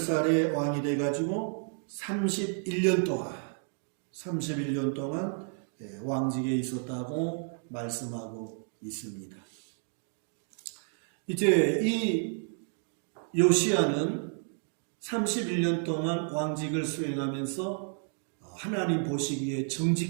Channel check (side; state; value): left; silent; 55 dB below the other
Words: 왕이 돼 가지고 31년 동안 왕직에 있었다고 말씀하고 있습니다. 이제 이 요시야는 31년 동안 왕직을 수행하면서 하나님 보시기에